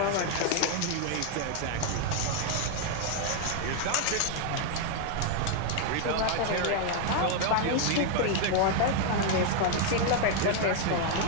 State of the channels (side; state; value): both; different; correlation 0.00